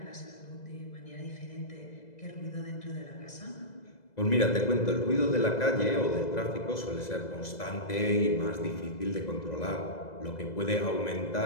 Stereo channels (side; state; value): right; late; 2.0 ms